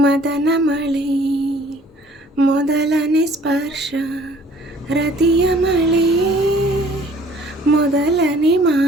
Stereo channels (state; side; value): normal; both; correlation 0.55